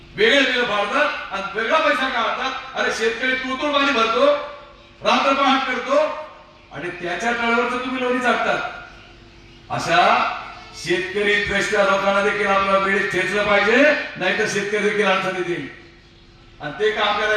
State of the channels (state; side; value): identical; both; correlation 1.00